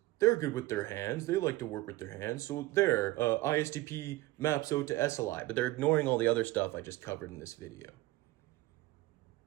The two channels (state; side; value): quieter; left; 18.5 dB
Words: they're good with their hands. They like to work with their hands. So there, ISTP maps out to SLI. But they're ignoring all the other stuff I just covered in this video.